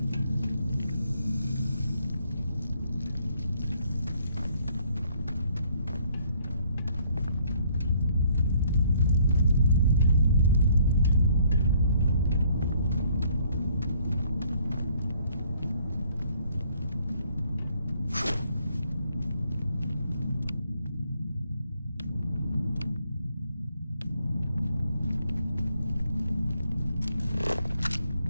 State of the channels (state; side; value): inverted; both; correlation -0.65